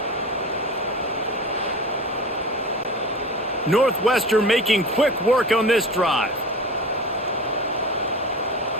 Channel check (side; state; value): both; normal; correlation 0.33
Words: Northwestern making quick work on this drive.